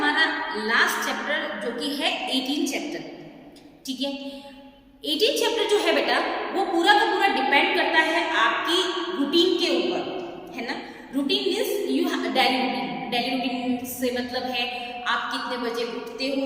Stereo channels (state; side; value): identical; both; correlation 1.00